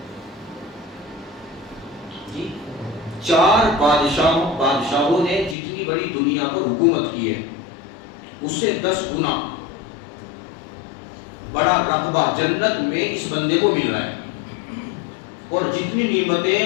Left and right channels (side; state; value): right; drops out; at 5.6 s